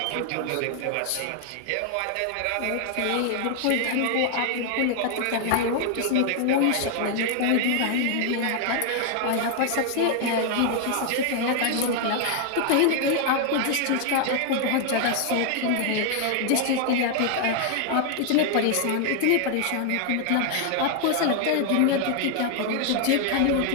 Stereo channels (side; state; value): both; different; correlation 0.00